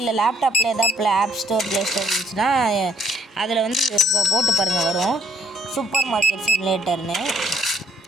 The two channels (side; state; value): both; normal; correlation 0.66